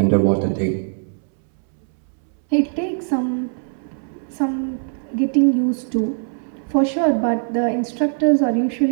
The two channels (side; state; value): left; silent; 65 dB below the other